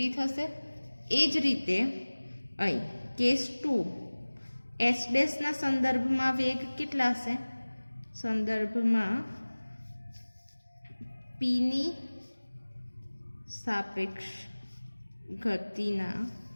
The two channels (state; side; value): inverted; both; correlation -1.00